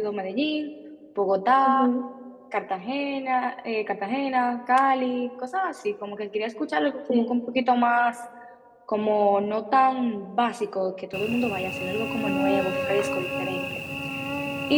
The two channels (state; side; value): identical; both; correlation 1.00